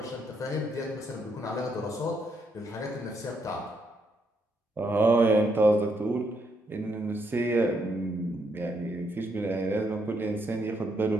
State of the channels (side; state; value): both; normal; correlation 0.76